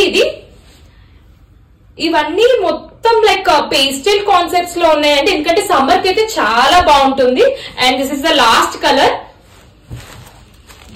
ఇది. ఇవన్నీ మొత్తం లైక్ పేస్టల్ కాన్సెప్ట్స్ లో ఉన్నాయండి. ఎందుకంటే సమ్మర్ కి అయితే చాలా బాగుంటుంది. And this is the last colour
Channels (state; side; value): identical; both; correlation 1.00